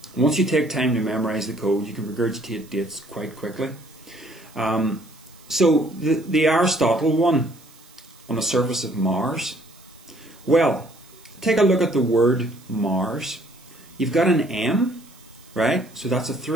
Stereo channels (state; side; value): noise; right; hiss, 26 dB below the sound